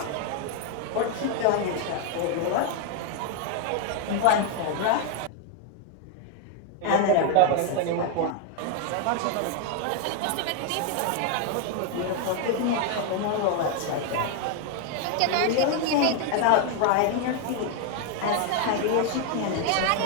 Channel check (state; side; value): different; both; correlation 0.01